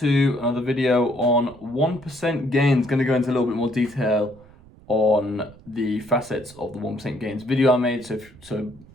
another video on 1% gains. Going to go into a little bit more detail on the facets of the 1% gains video I made. So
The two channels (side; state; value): right; noise; rumble, 23 dB below the sound